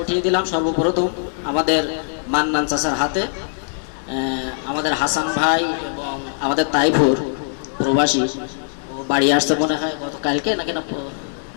উঠিয়ে দিলাম সর্বপ্রথম আমাদের মান্নান চাচার হাতে। আমাদের হাসান ভাই এবং আমাদের তাইফুর প্রবাসী, ও বাড়ি আসতে মনে হয় গতকালকে নাকি না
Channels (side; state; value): right; silent; digital silence